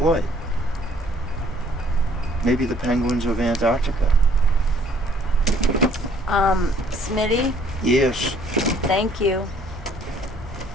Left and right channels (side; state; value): both; normal; correlation 0.61